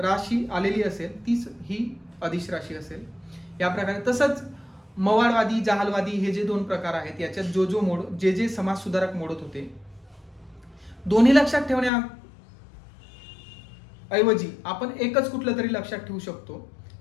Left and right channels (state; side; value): drops out; right; at 11.9 s